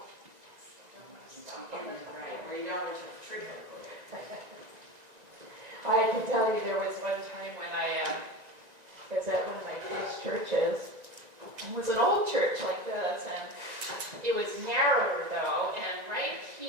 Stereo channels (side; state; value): left; late; 1.9 ms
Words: I can tell you there was one time when I was at one of my first churches. It was an old church like this, and it was narrower though, and right